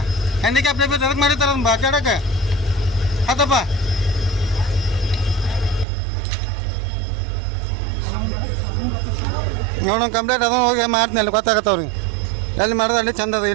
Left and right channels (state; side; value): drops out; left; at 5.9 s